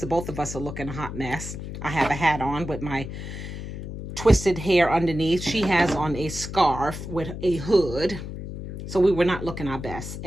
both of us are looking a hot mess. I have a hat on with my twisted hair underneath. She has on a scarf with a hood. So we were not looking our best.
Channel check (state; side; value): noise; left; hum, 8 dB below the sound